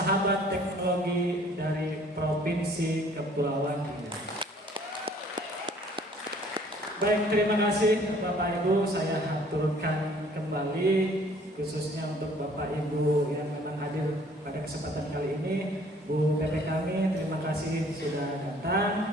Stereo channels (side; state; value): both; normal; correlation 0.56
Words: teknologi dari Provinsi Kepulauan Riau. Baik, terima kasih Bapak Ibu, saya haturkan kembali khususnya untuk Bapak Ibu yang memang hadir pada kesempatan kali ini. Bu PP kami, terima kasih sudah datang.